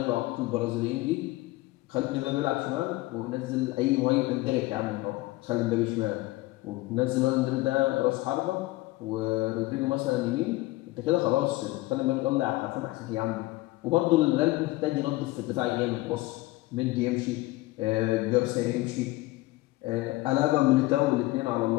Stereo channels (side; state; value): right; quieter; 19.6 dB